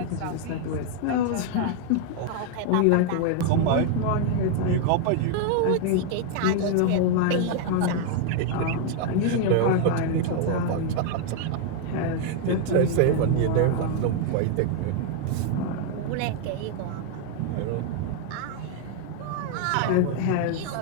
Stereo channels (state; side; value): different; both; correlation 0.00